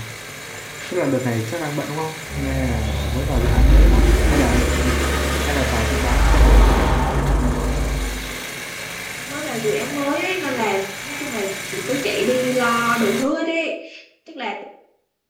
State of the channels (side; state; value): both; identical; correlation 1.00